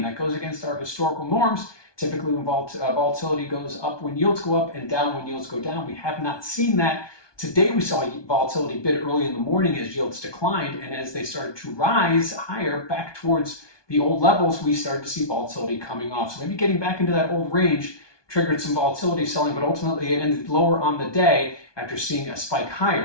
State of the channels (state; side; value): late; right; 1.2 ms